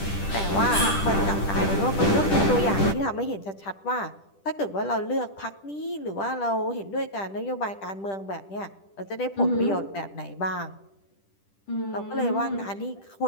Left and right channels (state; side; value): late; right; 10 ms